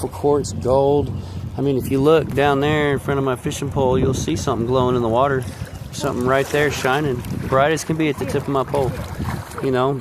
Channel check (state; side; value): identical; both; correlation 1.00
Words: quartz, gold. I mean, if you look down there in front of my fishing pole, you'll see something glowing in the water. Something right there shining, bright as can be at the tip of my pole. You know,